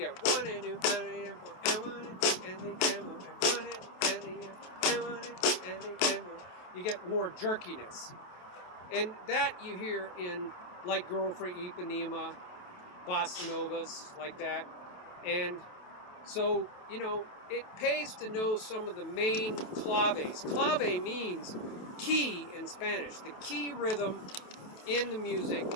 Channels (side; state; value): right; late; 28 ms